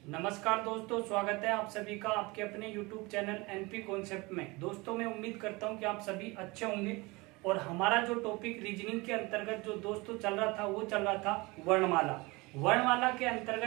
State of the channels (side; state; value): left; quieter; 24.2 dB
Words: नमस्कार दोस्तों, स्वागत है आप सभी का आपके अपने YouTube चैनल एनपी कॉन्सेप्ट में। दोस्तों मैं उम्मीद करता हूं कि आप सभी अच्छे होंगे। और हमारा जो टॉपिक रीजनिंग के अंतर्गत जो दोस्तों चल रहा था वो चल रहा था वर्णमाला। वर्णमाला के